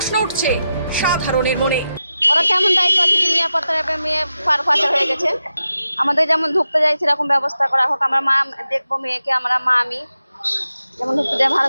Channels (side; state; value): both; inverted; correlation -0.90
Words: উঠছে সাধারণের মনে। ওরা কেমন দায়িত্ব আছে যে নিরাপত্তা মেয়ে পাচার হয়ে গেছে? আমাদের যেমন ঢুকতে যাই সেরকম ব্যবস্থা করা হোক। আমরা মা দেখবো মেয়েকে, আমরা মা আমি যেমন ঢুকতে যাই ভালো